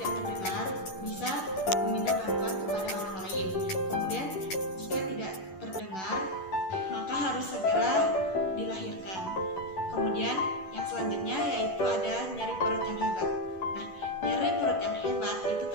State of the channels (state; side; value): late; right; 11 ms